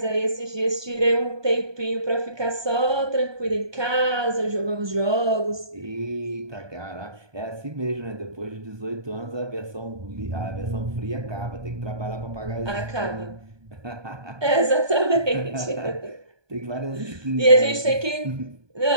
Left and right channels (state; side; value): late; left; 1.2 ms